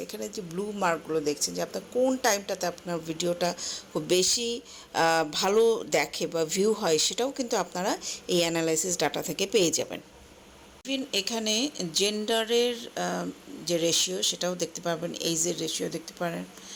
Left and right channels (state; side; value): identical; both; correlation 1.00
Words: এখানে যে ব্লু মার্কগুলো দেখছেন যে আপনার কোন টাইমটাতে আপনার ভিডিওটা খুব বেশি ভালো দেখে বা ভিউ হয়, সেটাও কিন্তু আপনারা এই অ্যানালাইসিস ডাটা থেকে পেয়ে যাবেন। ইভেন এখানে জেন্ডারের যে রেশিও সেটাও দেখতে পারবেন, এইজের রেশিও দেখতে পারেন,